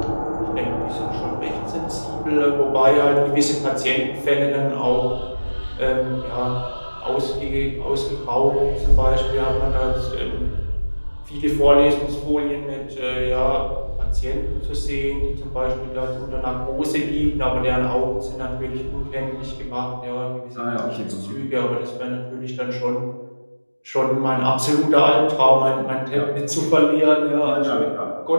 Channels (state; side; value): inverted; both; correlation -1.00